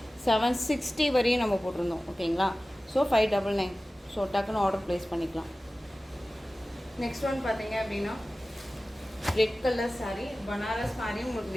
760 வரையும் நம்ம போட்டிருந்தோம். ஓகேங்களா, ஸோ 599. ஸோ டக்குன்னு ஆர்டர் ப்ளேஸ் பண்ணிக்கலாம். நெக்ஸ்ட் ஒன் பார்த்தீங்க அப்படின்னா ரெட் கலர் saree, பனாரஸ் மாதிரி உங்களுக்கு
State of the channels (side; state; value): both; normal; correlation 0.96